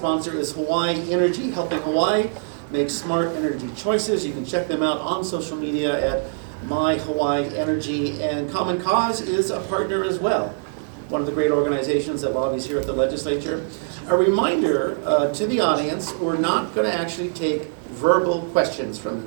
is Hawaii Energy, helping Hawaii make smart energy choices. You can check them out on social media at My Hawaii Energy, and Common Cause is a partner as well, one of the great organizations that lobbies here at the legislature. A reminder to the audience, we're not going to actually take verbal questions from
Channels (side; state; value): left; silent; digital silence